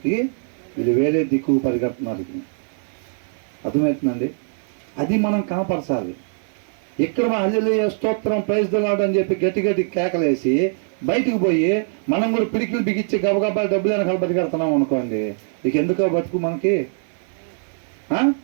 వేరే దిక్కు పరిగెడుతున్నారు. అర్థమవుతుందండి? అది మనం కనపరచాలి. ఇక్కడ హల్లెలూయా, స్తోత్రం, ప్రైజ్ ది లార్డ్ అని చెప్పి గట్టి కేకలేసి బయటికి పోయి మనం కూడా పిడికిలు బిగించి గబగబా డబ్బులు వెనకాల పరిగెడుతున్నాం అనుకోండి, ఇక ఎందుకో బతుకు మనకి?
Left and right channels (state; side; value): silent; left; digital silence